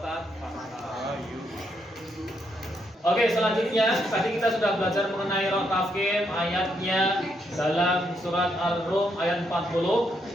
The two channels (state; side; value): normal; both; correlation 0.77